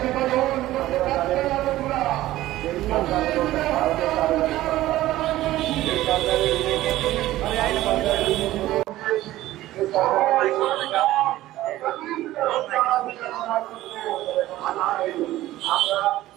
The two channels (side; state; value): left; quieter; 15.6 dB